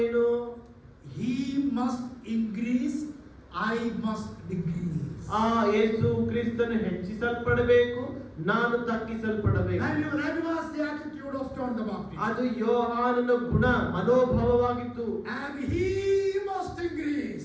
ಏನು? He must increase, I must decrease. ಯೇಸು ಕ್ರಿಸ್ತನು ಹೆಚ್ಚಿಸಲ್ಪಡಬೇಕು, ನಾನು ತಗ್ಗಿಸಲ್ಪಡಬೇಕು. That was the attitude of John the Baptist. ಅದು ಯೋಹಾನನ ಗುಣ ಮನೋಭಾವವಾಗಿತ್ತು. And he must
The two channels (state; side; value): identical; both; correlation 1.00